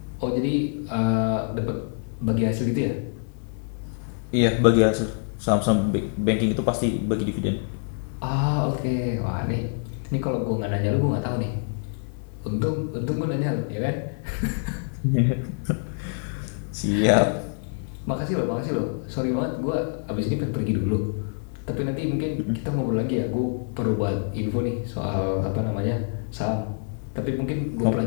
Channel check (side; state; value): right; silent; 59 dB below the other